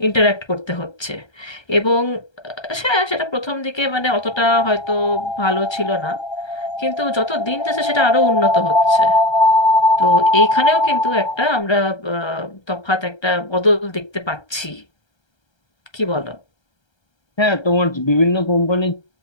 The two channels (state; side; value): late; right; 1.3 ms